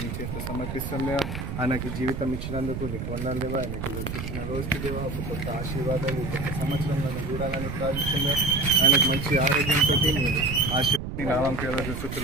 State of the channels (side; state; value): right; noise; rumble, 6 dB below the sound